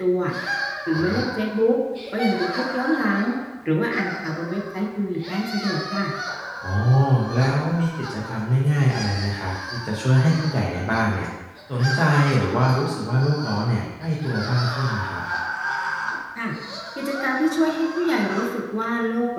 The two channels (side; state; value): both; identical; correlation 1.00